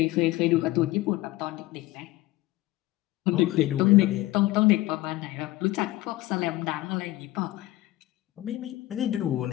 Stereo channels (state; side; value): quieter; right; 17.6 dB